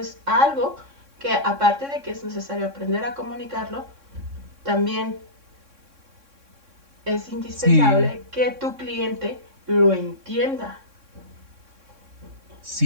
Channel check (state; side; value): late; left; 3.6 ms